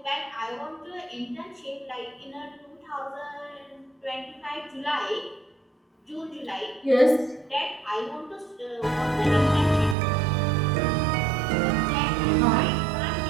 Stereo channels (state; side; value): drops out; left; at 10.0 s